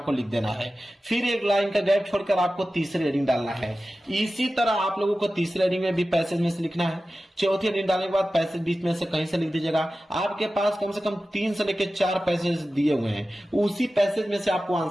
लिख देना है। फिर एक लाइन का गैप छोड़कर आपको तीसरी हेडिंग डालना है। इसी तरह आप लोगों को तीसरी हेडिंग में भी पैसेज में से लिखना है। चौथी हेडिंग डालने के बाद पैसेज बीच में से कहीं से लिख दीजिएगा। आपके पास कम से कम 3 से लेकर 4 पैसेज दिए हुए हैं, उसी पैसेज में से आपको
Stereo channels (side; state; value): both; normal; correlation 0.94